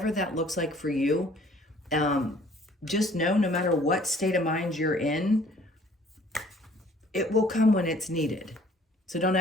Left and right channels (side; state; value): both; normal; correlation 0.56